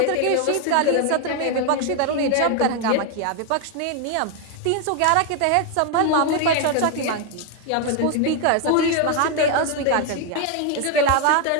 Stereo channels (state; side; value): different; both; correlation 0.01